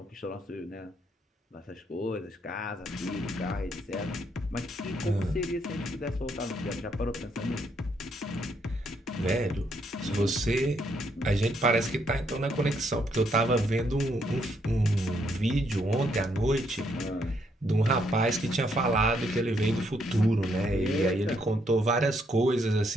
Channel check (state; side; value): normal; both; correlation 0.73